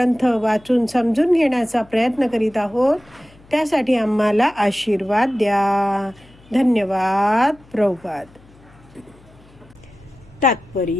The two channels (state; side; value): noise; left; hum, 27 dB below the sound